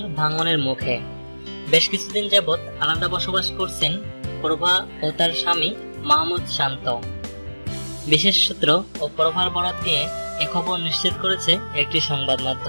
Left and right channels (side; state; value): both; inverted; correlation -1.00